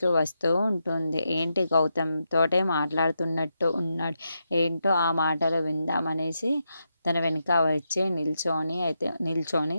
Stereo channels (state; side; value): inverted; both; correlation -0.84